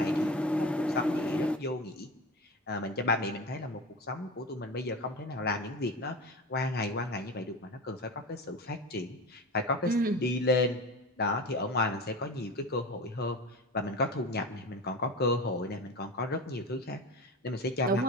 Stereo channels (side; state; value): both; normal; correlation 0.28